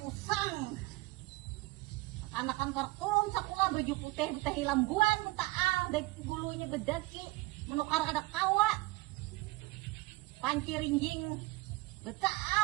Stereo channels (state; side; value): quieter; left; 22.3 dB